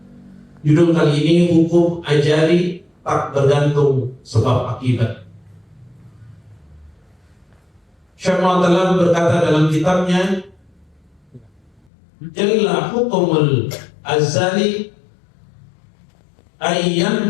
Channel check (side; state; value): right; drops out; at 11.8 s